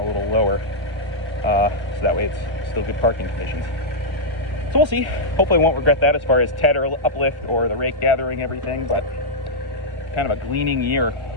little lower. So that way it's still good parking conditions. So we'll see. Hopefully I won't regret that as far as tedder uplift or the rake gathering everything, but kind of a gleaning year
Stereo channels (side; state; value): right; late; 1.3 ms